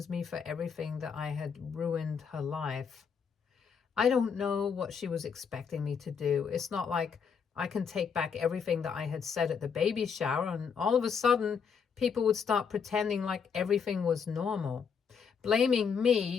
me for everything, that I had ruined her life. I don't know what she was expecting me to do. It's not like I can take back everything that I had said at the baby shower, and all of a sudden, people would start pretending like everything was normal. Blaming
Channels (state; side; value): quieter; right; 6.4 dB